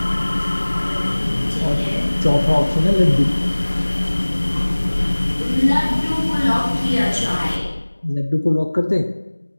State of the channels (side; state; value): both; inverted; correlation -1.00